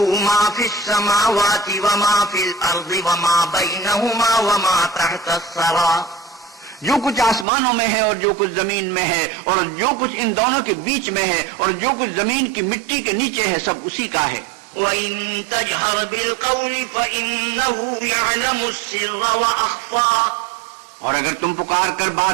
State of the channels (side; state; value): left; drops out; at 7.5 s